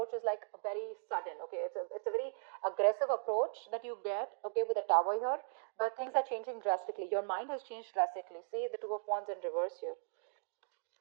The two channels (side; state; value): left; silent; digital silence